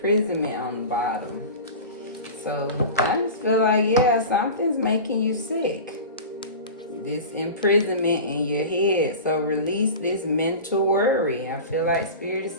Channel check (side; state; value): both; inverted; correlation -0.31